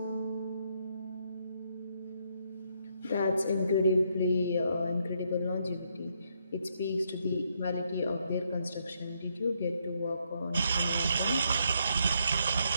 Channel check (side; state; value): both; inverted; correlation -0.75